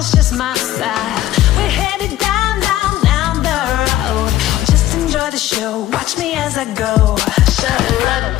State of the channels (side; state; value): right; quieter; 14.1 dB